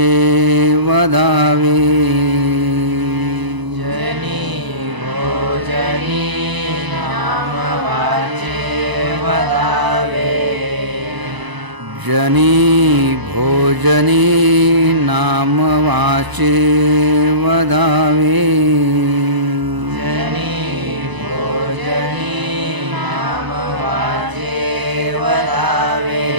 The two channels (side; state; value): left; late; 1.0 ms